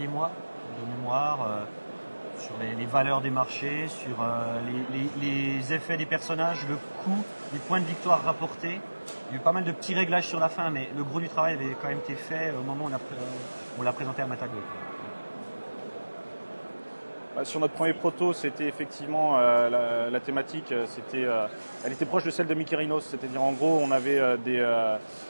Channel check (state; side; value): inverted; both; correlation -1.00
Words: mois, de mémoire, sur les valeurs des marchés, sur les effets des personnages, le coût, les points de victoire rapportés. Il y a eu pas mal de petits réglages sur la fin, mais le gros du travail avait quand même été fait au moment où on l'a présenté à Matago. Sur notre premier proto, c'était effectivement la thématique, elle était proche de celle de Mykérinos, c'est-à-dire en gros on avait